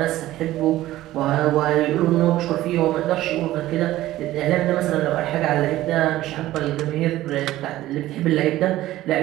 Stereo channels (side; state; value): left; quieter; 15.4 dB